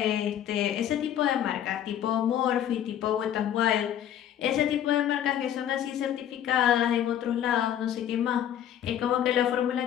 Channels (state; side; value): quieter; right; 10.5 dB